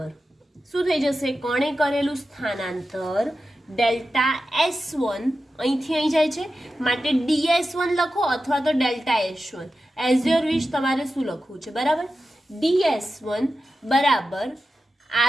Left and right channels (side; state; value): both; normal; correlation 0.92